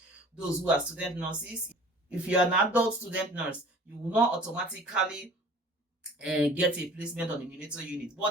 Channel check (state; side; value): normal; both; correlation 0.46